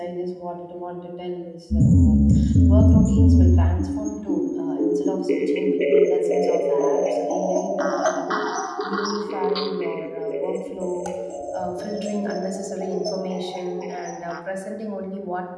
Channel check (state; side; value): identical; both; correlation 1.00